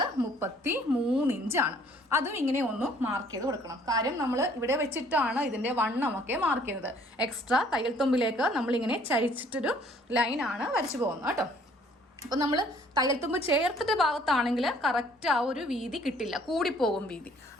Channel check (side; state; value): both; normal; correlation 0.59